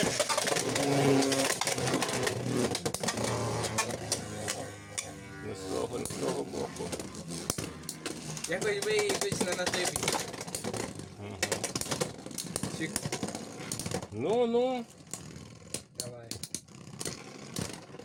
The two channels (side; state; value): both; identical; correlation 1.00